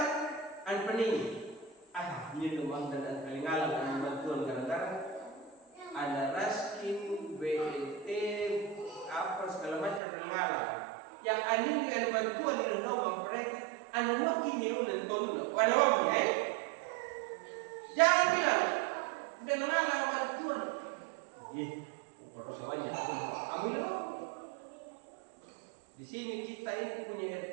an pening. Ini rumah dan kalingalang an bantuan kadang-kadang. Ada raskin, BLT, apa segala macam ngalang. Yang anjing ada bantuan di rumah mereka, ada wakil nyuruh tondo, ada wakil ya. Jangan bilang, udah ngalang bantuan. Harus semuanya. Ambil. Di sini kita ini punya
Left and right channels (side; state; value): left; drops out; at 10.0 s